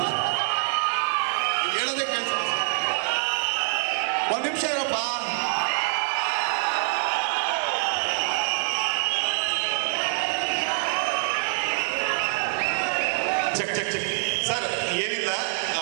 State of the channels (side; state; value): left; silent; digital silence